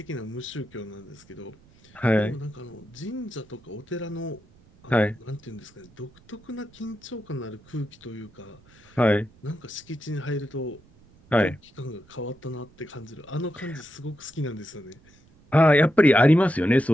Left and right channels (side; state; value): right; noise; rumble, 27 dB below the sound